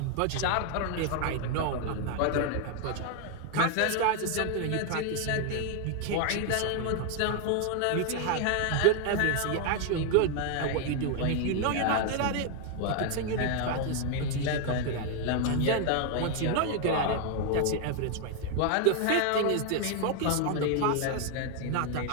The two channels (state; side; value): different; both; correlation 0.01